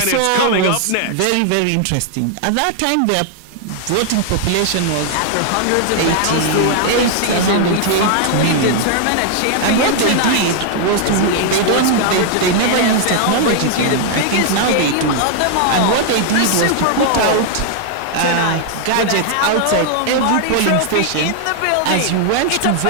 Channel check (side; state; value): both; different; correlation 0.00